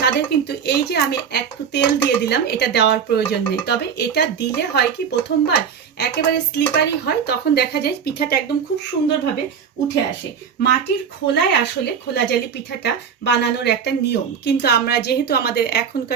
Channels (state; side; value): quieter; left; 7.2 dB